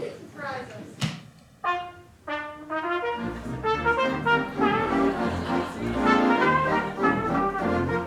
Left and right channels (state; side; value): identical; both; correlation 1.00